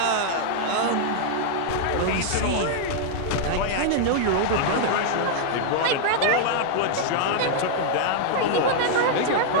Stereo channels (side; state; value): both; different; correlation -0.01